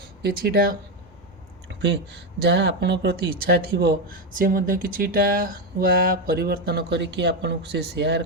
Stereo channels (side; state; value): both; normal; correlation 0.09